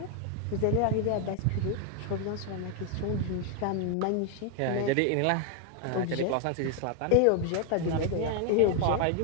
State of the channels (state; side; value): different; both; correlation 0.01